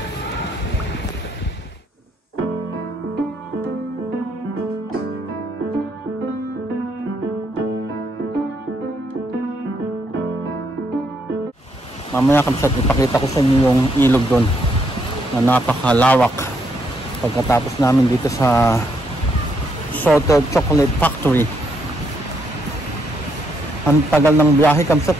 Mamaya kapsat ipakita ko sa inyo yung ilog doon na napakalawak. Pagkatapos namin dito sa Salted Chocolate Factory. Ang tagal ng biyahe kapsat,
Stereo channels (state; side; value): normal; both; correlation 0.75